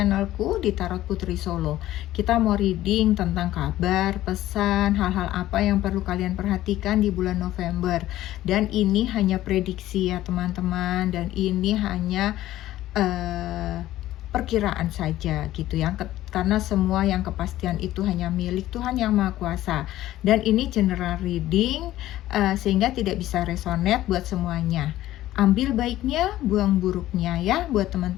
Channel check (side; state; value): right; quieter; 14.6 dB